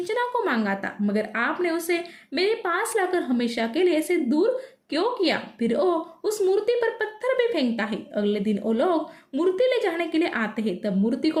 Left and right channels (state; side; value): identical; both; correlation 1.00